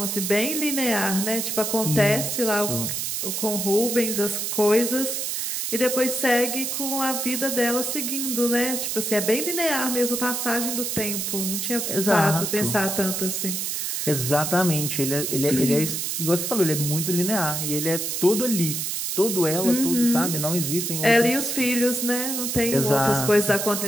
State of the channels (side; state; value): right; noise; hiss, 2 dB below the sound